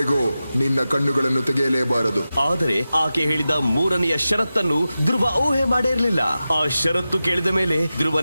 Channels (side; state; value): both; inverted; correlation -0.93